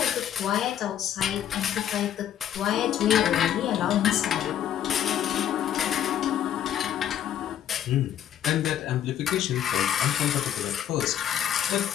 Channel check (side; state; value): right; quieter; 10.4 dB